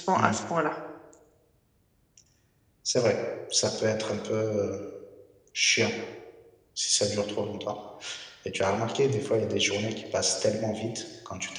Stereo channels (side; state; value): both; identical; correlation 1.00